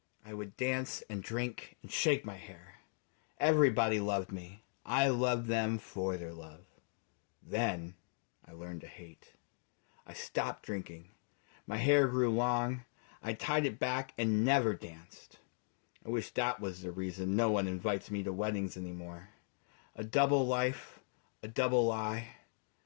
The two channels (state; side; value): silent; right; digital silence